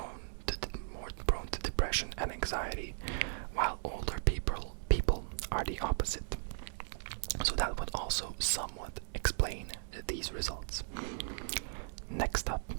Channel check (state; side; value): silent; left; digital silence